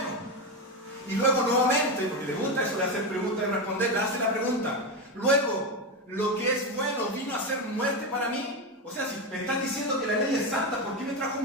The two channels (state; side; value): normal; both; correlation 0.14